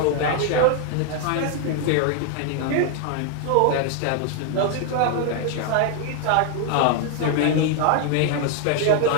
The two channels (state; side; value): different; both; correlation 0.00